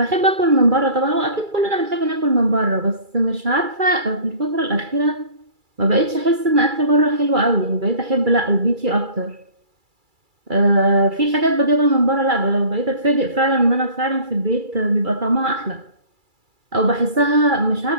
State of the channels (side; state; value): left; late; 2.3 ms